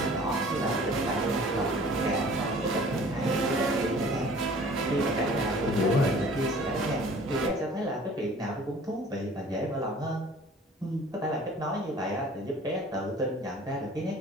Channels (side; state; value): both; normal; correlation 0.49